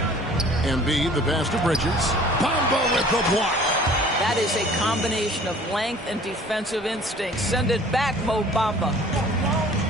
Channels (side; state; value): both; normal; correlation 0.50